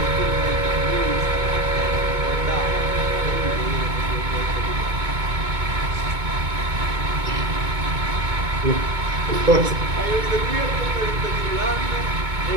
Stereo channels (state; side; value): late; left; 2.2 ms